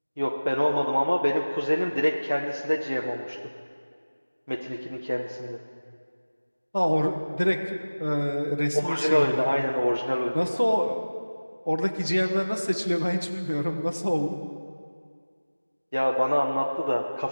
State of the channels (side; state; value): both; inverted; correlation -1.00